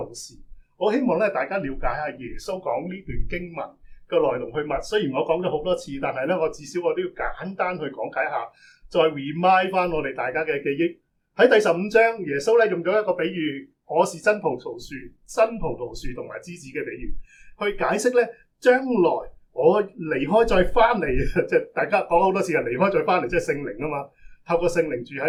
時，我希望咧大家了解下耶穌講呢段經文嘅來龍去脈。雖然我講咗好多次，但係咧我至少我都要簡單去講解下，再 remind 翻我哋大家嘅記憶。喺第15章，耶穌咧用咗一個比喻，我是真葡萄樹，真葡萄樹同埋枝子嘅比喻，去解釋咧將來我離開再翻嚟，即係大家講好多次，離開再翻嚟，即係聖靈啊嘛，透過聖靈住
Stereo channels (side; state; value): both; identical; correlation 1.00